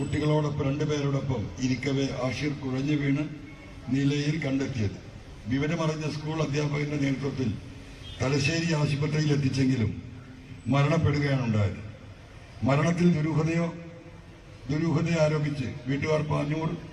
2 പേരോടൊപ്പം ഇരിക്കവേ ആഷിർ കുഴഞ്ഞു വീണ് നിലയിൽ കണ്ടെത്തിയത്. വിവരമറിഞ്ഞ സ്കൂൾ അധ്യാപകന്റെ നേതൃത്വത്തിൽ തലശ്ശേരി ആശുപത്രിയിൽ എത്തിച്ചെങ്കിലും മരണപ്പെടുകയാണ് ഉണ്ടായത്. മരണത്തിൽ ദുരൂഹതയെ ആരോപിച്ച് വീട്ടുകാർ പാനൂർ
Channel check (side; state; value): both; identical; correlation 1.00